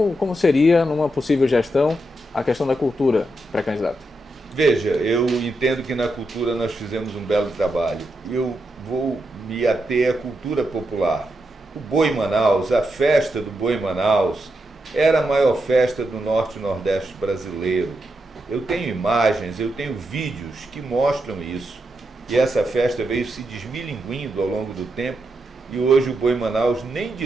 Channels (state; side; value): normal; both; correlation 0.85